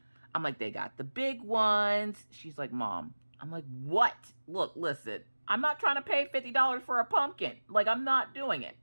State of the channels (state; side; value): inverted; both; correlation -1.00